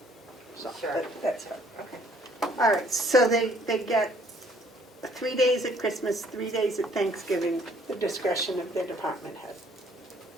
So Sure. that's it. Okay. All right, so they get 3 days at Christmas, 3 days at Thanksgiving, the discretion of their department head.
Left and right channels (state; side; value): normal; both; correlation 0.61